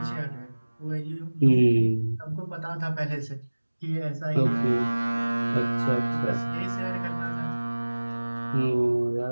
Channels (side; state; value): both; inverted; correlation -1.00